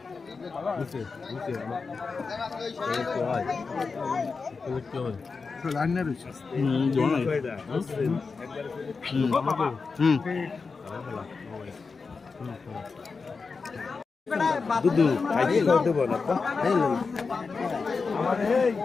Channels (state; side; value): quieter; right; 4.7 dB